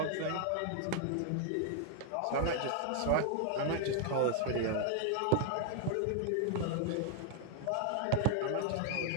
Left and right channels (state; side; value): different; both; correlation 0.00